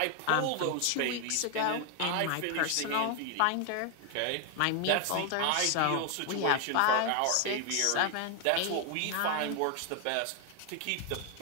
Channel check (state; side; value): different; both; correlation 0.01